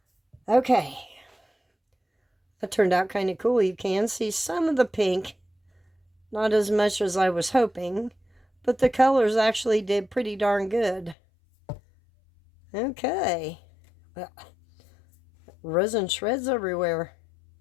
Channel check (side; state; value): right; drops out; at 11.2 s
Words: Okay. That turned out kind of cool. You can see some of the pink. Not as much as I was hoping. But the colors actually did pretty darn good. Okay. Well, resin shreds everywhere.